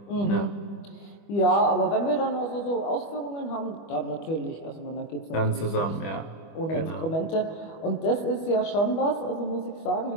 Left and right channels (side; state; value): right; late; 25 ms